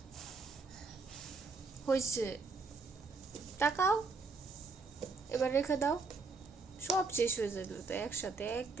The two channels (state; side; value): quieter; left; 4.2 dB